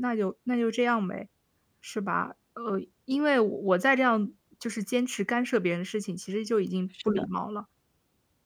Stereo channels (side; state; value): both; identical; correlation 1.00